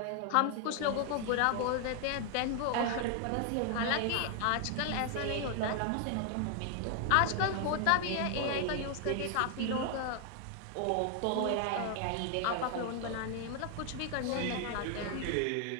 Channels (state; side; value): different; both; correlation 0.00